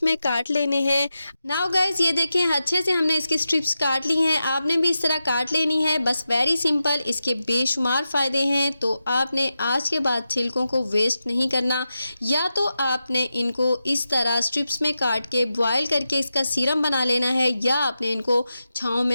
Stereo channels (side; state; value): both; inverted; correlation -0.90